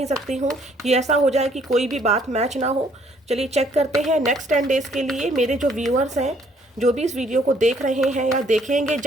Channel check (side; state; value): both; normal; correlation 0.64